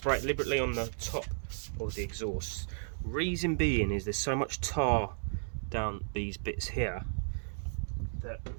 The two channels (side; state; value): left; silent; 55 dB below the other